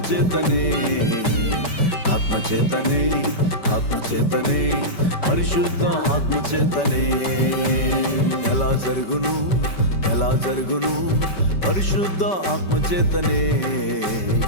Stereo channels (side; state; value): right; late; 5.2 ms